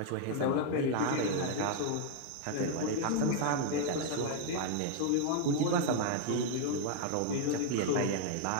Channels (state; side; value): different; both; correlation 0.01